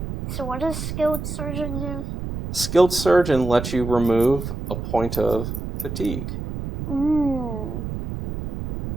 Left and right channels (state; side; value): noise; right; rumble, 6 dB below the sound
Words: So what does Skilled Surgeon do? Skilled Surgeon lets you remove a point of fatigue. Ooh.